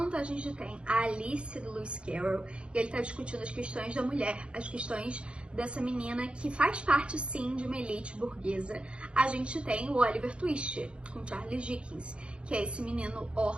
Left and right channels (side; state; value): left; late; 0.056 ms